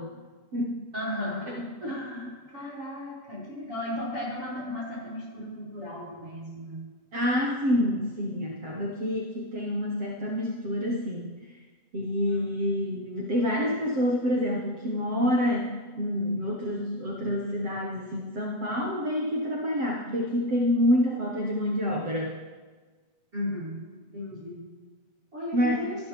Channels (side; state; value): left; late; 7.7 ms